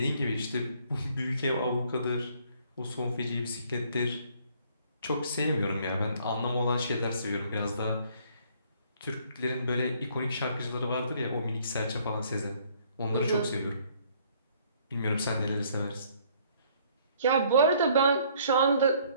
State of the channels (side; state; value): both; inverted; correlation -0.62